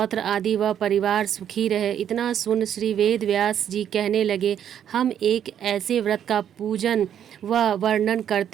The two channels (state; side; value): quieter; left; 9.5 dB